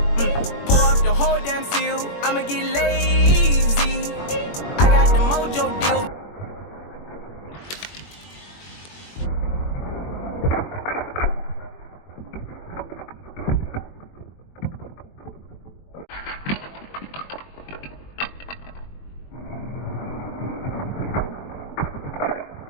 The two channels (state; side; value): late; right; 21 ms